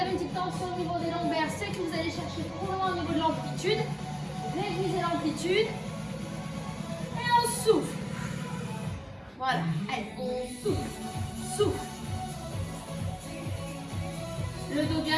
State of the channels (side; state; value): both; identical; correlation 1.00